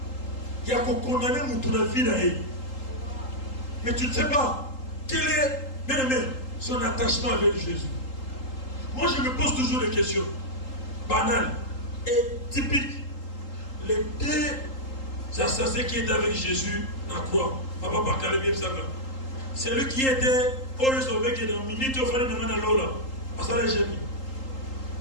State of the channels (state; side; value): late; right; 3.8 ms